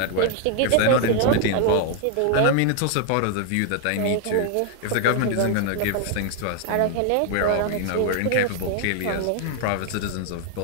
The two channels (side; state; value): both; different; correlation 0.00